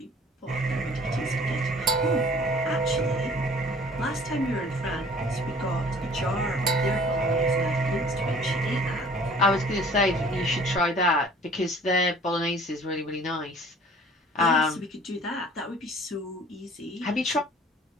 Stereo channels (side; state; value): both; normal; correlation 0.50